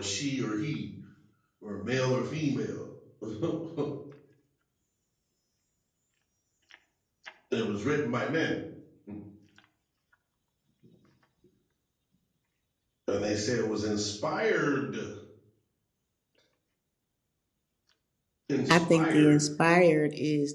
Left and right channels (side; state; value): both; identical; correlation 1.00